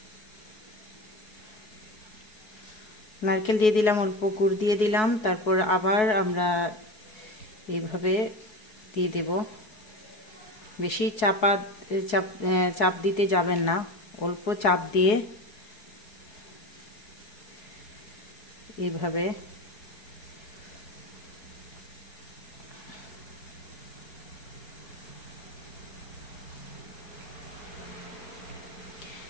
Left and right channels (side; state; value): right; late; 4.7 ms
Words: নারকেল দিয়ে দিলাম, অল্প গুড় দিয়ে দিলাম। তারপর আবার আমরা এইভাবে দিয়ে দেব। বেশি চাপ দিতে যাবেন না, অল্প চাপ দিয়ে এইভাবে